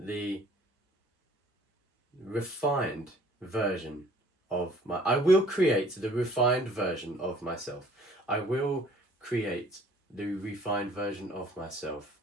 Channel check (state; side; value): normal; both; correlation 0.55